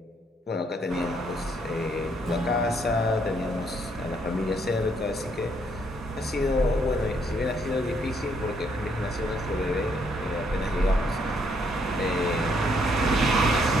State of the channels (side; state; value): both; normal; correlation 0.71